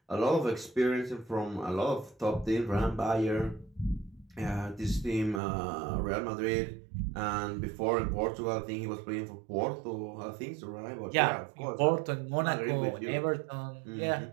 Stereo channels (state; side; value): drops out; left; at 5.4 s